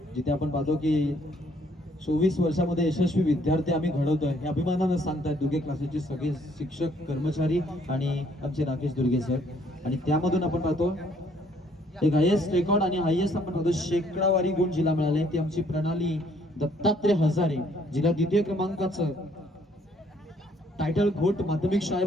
जिथे आपण पाहतो की 24 वर्षामध्ये यशस्वी विद्यार्थी आम्ही घडवतोय हे अभिमानानं सांगतात दुर्गे क्लासेसचे सगळे शिक्षक, कर्मचारी आणि आमचे राकेश दुर्गे सर. आणि त्यामधून आपण पाहतो एक हायेस्ट रेकॉर्ड आणि हायेस्ट आपण पाहतो शेकडावारी गुण जिला मिळाले ती आमची प्रणाली दत्तात्रय हजारे, जिला द्वितीय क्रमांकाचं टायटल घोट माध्यमिक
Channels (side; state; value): both; normal; correlation 0.65